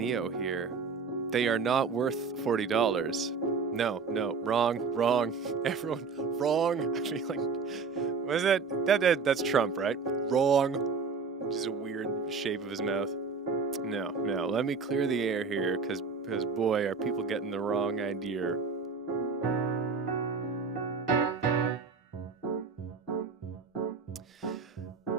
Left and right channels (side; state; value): left; quieter; 5.0 dB